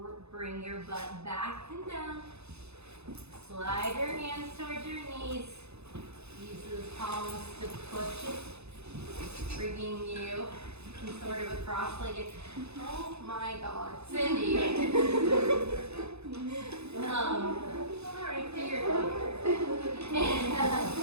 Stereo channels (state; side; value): late; left; 0.80 ms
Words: bring your butt back and down. Slide your hands towards your knees. Use those palms to push it, bringing you in sort of a cross-legged. Oh my God, Cindy. All right, there you go.